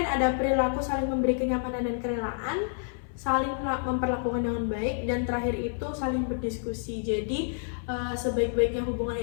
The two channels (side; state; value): right; silent; 57 dB below the other